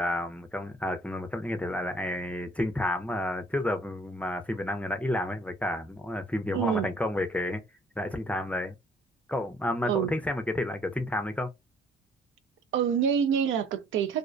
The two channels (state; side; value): normal; both; correlation 0.59